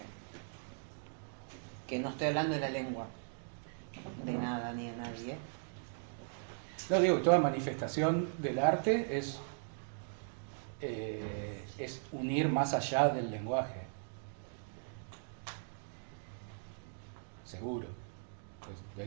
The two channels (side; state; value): left; silent; digital silence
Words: Que no estoy hablando de la lengua, de nada ni de nadie, No digo, toda manifestación del arte es unir más allá del lenguaje. Seguro. Pues de